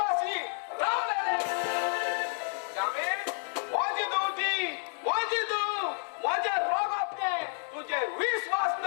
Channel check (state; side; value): silent; right; 58 dB below the other